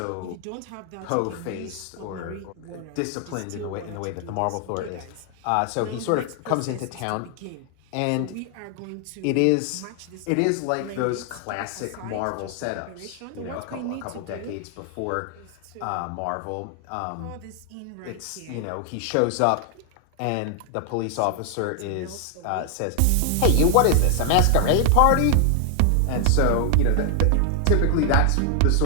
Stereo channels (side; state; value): both; different; correlation 0.00